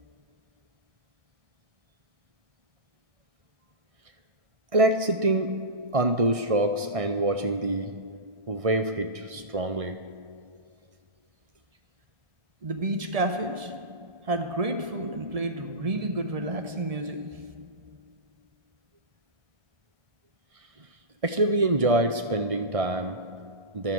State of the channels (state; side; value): late; left; 1.6 ms